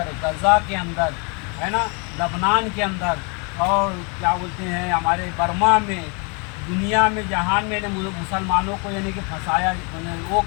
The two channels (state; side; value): quieter; right; 34.1 dB